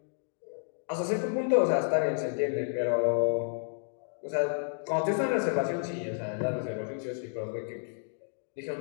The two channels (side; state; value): right; silent; digital silence